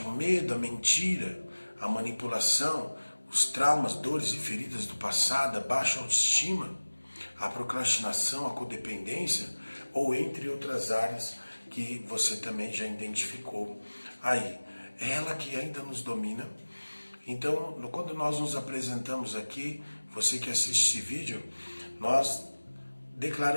o medo, a mentira, a manipulação, os traumas, dores e feridas do passado, a baixa autoestima, a procrastinação, a codependência, ou entre outras áreas que você também já identificou aí. É ela que ainda nos domina. Então, quando nós nos apresentamos aqui, você que assiste esse vídeo, nós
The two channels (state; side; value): inverted; both; correlation -1.00